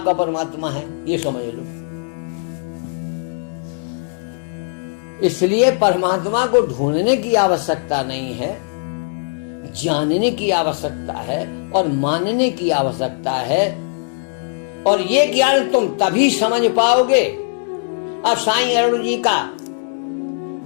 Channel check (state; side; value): silent; right; digital silence